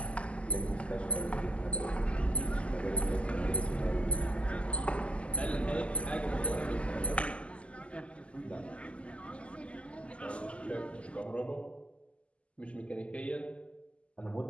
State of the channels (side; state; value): right; late; 0.058 ms